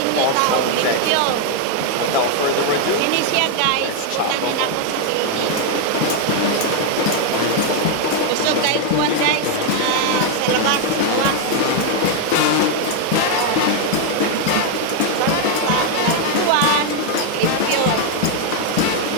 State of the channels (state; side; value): different; both; correlation 0.01